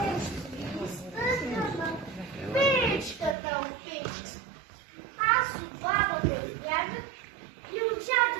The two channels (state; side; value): drops out; left; at 3.4 s